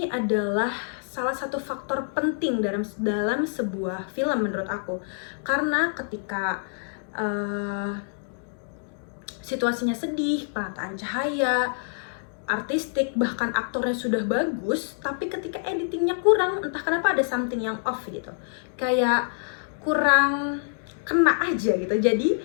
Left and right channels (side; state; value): right; silent; digital silence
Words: adalah salah satu faktor penting dalam sebuah film menurut aku, karena ketika situasinya sedih, penataan cahaya, artistik, bahkan aktornya sudah bagus, tapi ketika editingnya kurang, entah kenapa ada something yang off gitu, kayak kurang kena aja gitu. Jadi